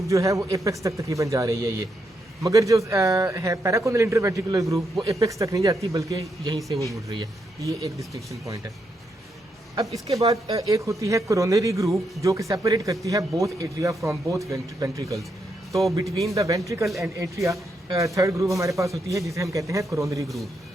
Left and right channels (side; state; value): both; normal; correlation 0.80